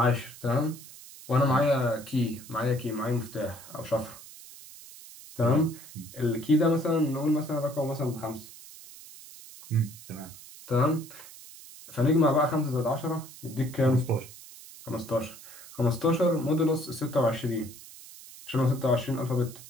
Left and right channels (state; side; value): noise; right; hiss, 17 dB below the sound